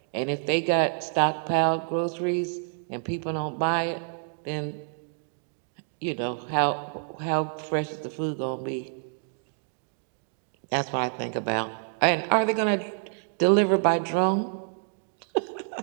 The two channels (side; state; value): left; silent; digital silence